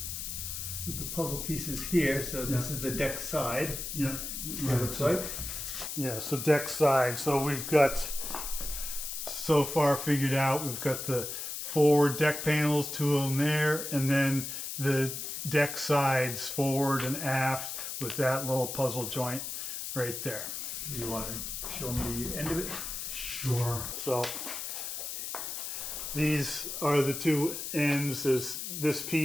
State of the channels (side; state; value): left; noise; hiss, 5 dB below the sound